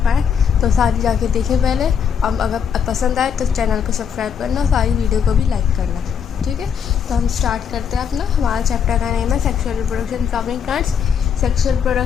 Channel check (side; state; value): right; quieter; 7.4 dB